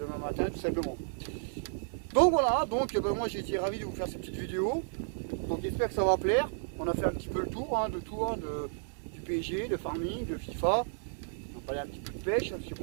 tout simplement. Donc voilà, moi j'ai été ravi de vous faire cette petite vidéo. Donc j'espère que ça va plaire. On a fait un petit peu le tour du PSG, de farming, de FIFA. On va parler un petit peu de pêche, parce que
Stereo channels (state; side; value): silent; left; 56 dB below the other